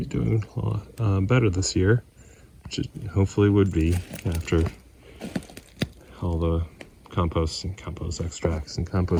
doing a lot better this year, which it hopefully would be after all the compost and compost extracts and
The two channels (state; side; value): identical; both; correlation 1.00